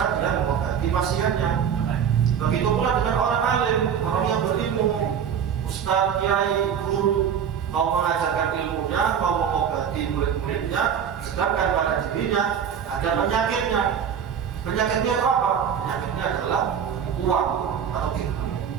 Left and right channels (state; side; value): quieter; left; 8.0 dB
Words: dia mengobati pasiennya? Begitu pula dengan orang alim, orang yang berilmu, ustaz, kiai, guru, mau mengajarkan ilmunya, mau mengobati murid-muridnya, sedangkan pada dirinya ada penyakitnya. Penyakitnya apa? Penyakitnya adalah uang atau dirham.